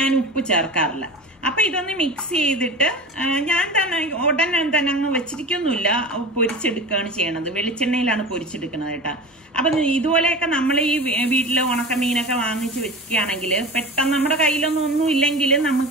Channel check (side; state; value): both; normal; correlation 0.32